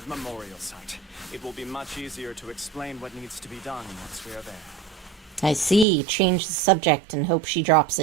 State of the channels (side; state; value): left; drops out; at 5.9 s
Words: memorial site. It will be much easier to explain what needs to be done once we are there. I see. Change the subject and hope she drops